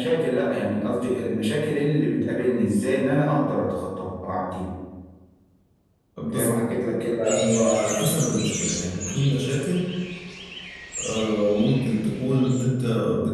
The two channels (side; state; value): both; identical; correlation 1.00